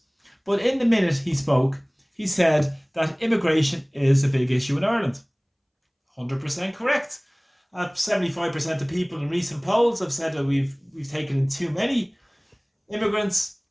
But in the minute he spoke, he said that immigration is a big issue in Ireland. 100% correct. 75% of people in recent polls have said that we've taken in too many immigrants,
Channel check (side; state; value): both; identical; correlation 1.00